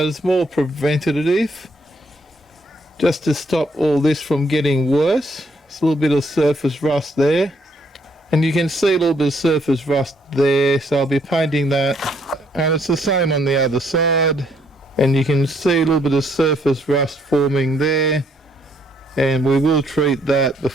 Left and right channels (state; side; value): normal; both; correlation 0.70